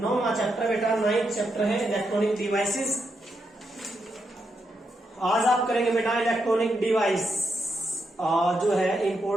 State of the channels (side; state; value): both; normal; correlation 0.83